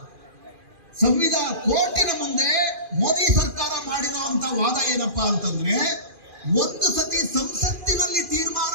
ಕೋರ್ಟಿನ ಮುಂದೆ ಮೋದಿ ಸರ್ಕಾರ ಮಾಡಿರುವಂತ ವಾದ ಏನಪ್ಪಾ ಅಂತಂದ್ರೆ, ಒಂದು ಸತಿ ಸಂಸತ್ತಿನಲ್ಲಿ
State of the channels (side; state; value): left; late; 2.4 ms